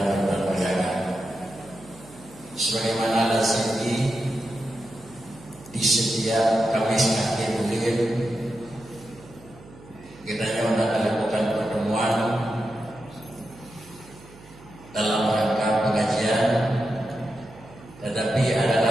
berbahagia. Sebagaimana lazimnya di setiap Kamis akhir bulan kita akan lakukan pertemuan dalam rangka pengajian, tetapi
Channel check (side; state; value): right; noise; hum, 22 dB below the sound